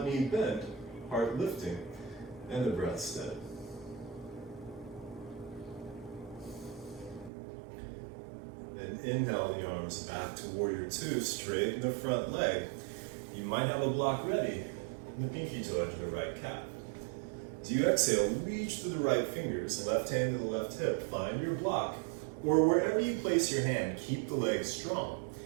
knee bent, heart lifting, and the breath steady. Then inhale the arms back to Warrior 2, straighten the front leg. You might have a block ready in the pinky toe edge of the right calf. As you exhale, reach to the right fingers, left hand to the left hip, find your block, or wherever you place your hand, keep the legs strong.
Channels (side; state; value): left; drops out; at 7.3 s